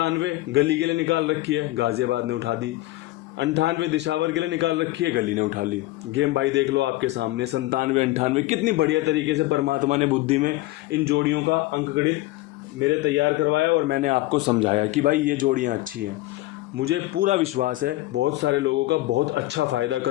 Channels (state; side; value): quieter; right; 18.3 dB